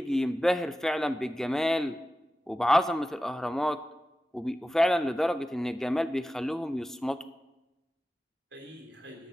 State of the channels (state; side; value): normal; both; correlation 0.94